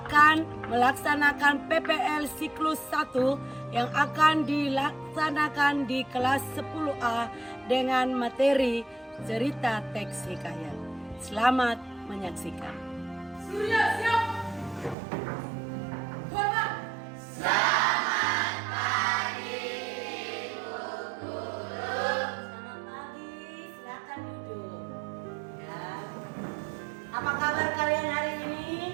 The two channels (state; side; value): drops out; left; at 15.0 s